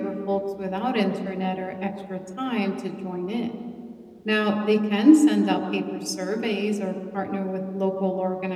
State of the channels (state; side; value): identical; both; correlation 1.00